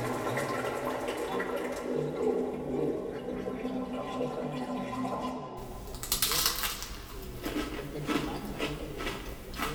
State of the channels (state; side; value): identical; both; correlation 1.00